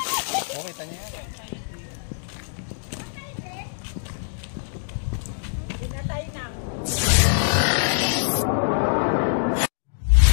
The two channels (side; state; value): right; silent; digital silence